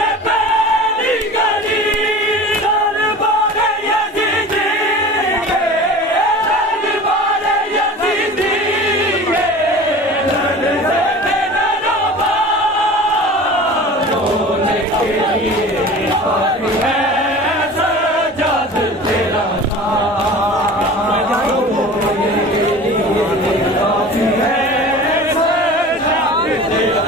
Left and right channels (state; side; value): normal; both; correlation 0.38